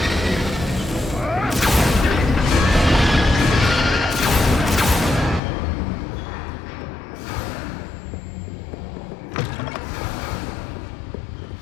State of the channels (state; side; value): drops out; right; at 5.4 s